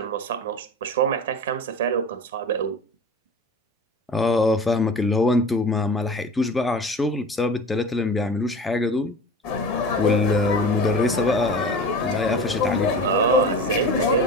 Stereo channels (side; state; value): both; normal; correlation 0.35